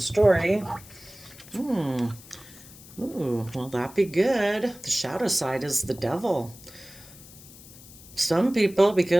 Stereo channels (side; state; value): left; noise; hiss, 20 dB below the sound